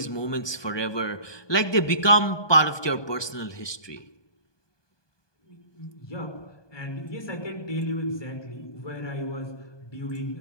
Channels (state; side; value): late; right; 1.2 ms